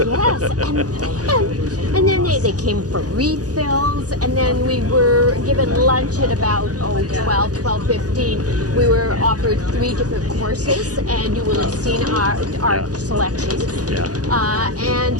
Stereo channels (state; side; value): late; left; 0.68 ms